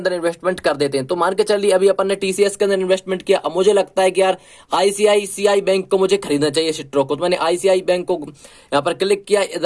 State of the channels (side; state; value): both; identical; correlation 1.00